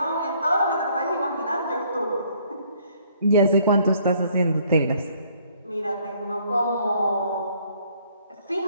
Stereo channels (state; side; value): inverted; both; correlation -0.63